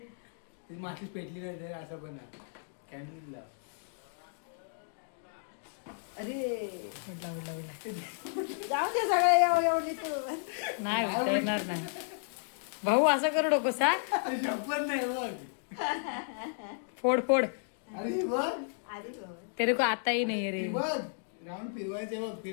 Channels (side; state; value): right; silent; digital silence